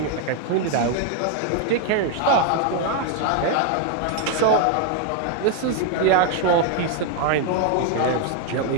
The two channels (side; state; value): both; different; correlation 0.01